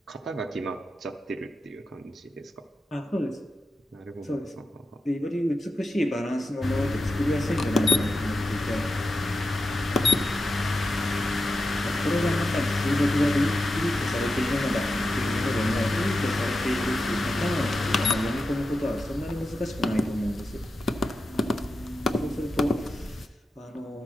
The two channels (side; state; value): both; normal; correlation 0.90